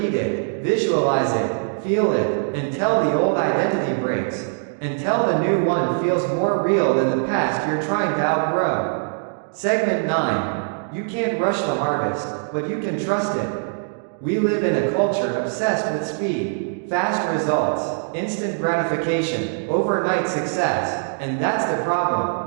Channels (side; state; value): left; silent; 64 dB below the other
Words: it, visualize it, feel it, until the old identity breaks, until the new one feels more real than the past you're trying to outgrow. Segment 9. You can't rush the harvest, but you can trust it. We live in a culture obsessed with speed, fast results, instant gratification, overnight success, and that's the